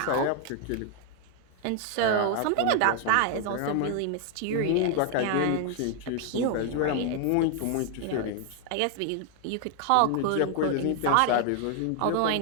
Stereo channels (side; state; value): both; different; correlation 0.00